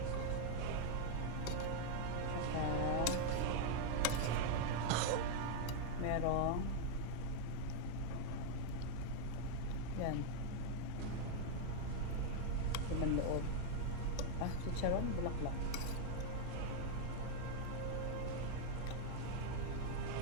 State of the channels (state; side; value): different; both; correlation 0.00